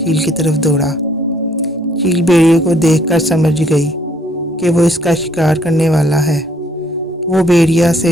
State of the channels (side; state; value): both; normal; correlation 0.65